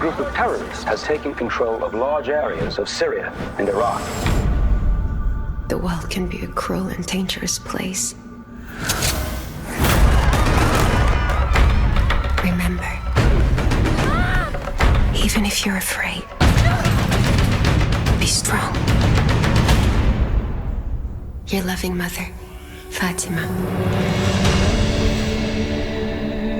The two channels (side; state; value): both; identical; correlation 1.00